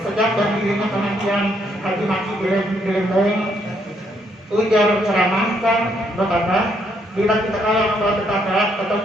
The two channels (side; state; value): both; normal; correlation 0.72